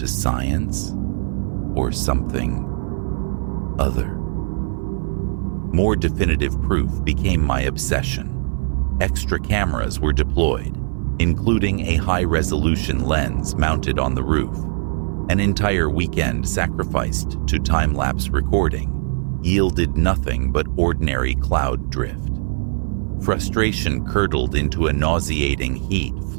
science, or something other? More definitive proof became my obsession. Extra cameras were deployed, including a high-resolution lens mounted on the roof. An entire weekend sacrificed to time-lapse recording yielded nothing but ordinary cloud drift. Frustration curdled into a nauseating heat,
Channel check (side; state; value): left; silent; 56 dB below the other